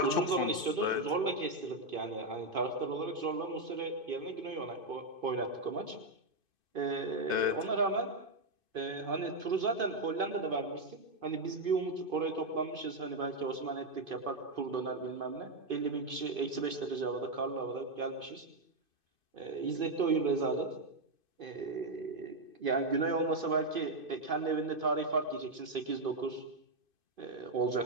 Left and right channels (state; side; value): late; left; 2.5 ms